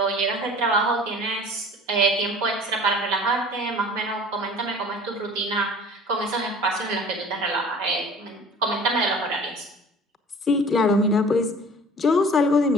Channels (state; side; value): normal; both; correlation 0.45